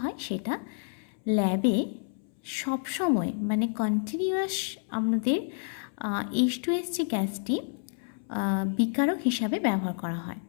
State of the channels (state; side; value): silent; right; 58 dB below the other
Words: হয়, সেটা ল্যাবে সবসময় মানে কন্টিনিউয়াস আমাদের H2S যে গ্যাসটি বিকারক হিসাবে ব্যবহার করা হয়,